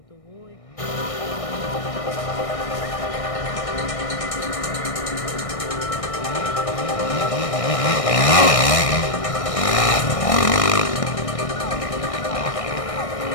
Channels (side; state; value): right; late; 1.6 ms